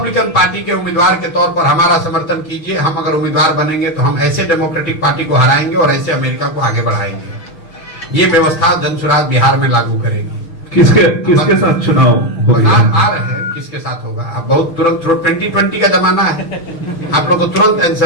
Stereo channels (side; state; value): right; late; 6.4 ms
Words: पार्टी के उम्मीदवार के तौर पर हमारा समर्थन कीजिए, हम अगर उम्मीदवार बनेंगे तो हम ऐसे डेमोक्रेटिक पार्टी को हराएंगे और ऐसे अमेरिका को आगे बढ़ाएंगे। ये व्यवस्था जनसुराज बिहार में लागू करेगी। किसके साथ चुनाव होगा? आ रहे हैं किसके साथ होगा। अब बहुत तुरंत 2020 का जमाना है, आप लोग को तुरंत